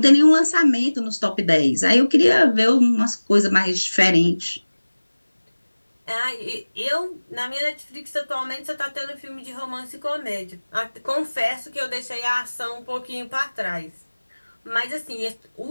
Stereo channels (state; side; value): inverted; both; correlation -1.00